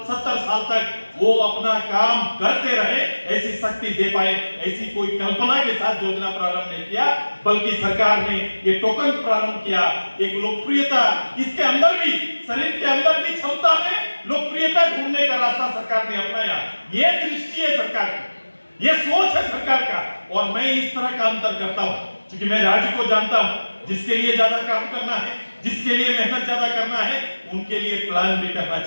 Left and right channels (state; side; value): inverted; both; correlation -1.00